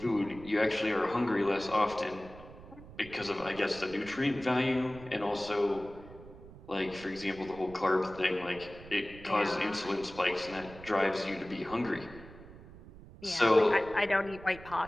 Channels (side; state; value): right; noise; rumble, 18 dB below the sound